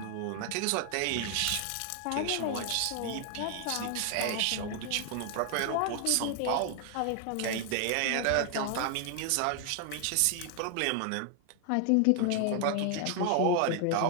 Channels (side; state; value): both; different; correlation 0.00